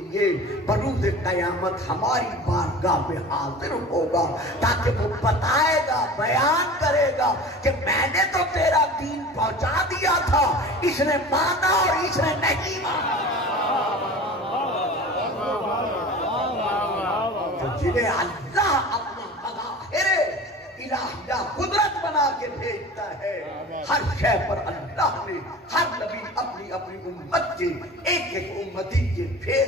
بروز قیامت ہماری بارگاہ میں حاضر ہوگا، تاکہ وہ بتائے گا، بیان کرے گا کہ میں نے تو تیرا دین پہنچا دیا تھا، اس نے مانا اور اس نے نہیں مانا۔ تو جنہیں اللہ اپنا مظاہر الہیہ قدرت بنا کے بھیجتا ہے، ہر شے پر اللہ نے ہر نبی اپنی اپنی امت کے ایک ایک امتی کے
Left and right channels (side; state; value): both; normal; correlation 0.38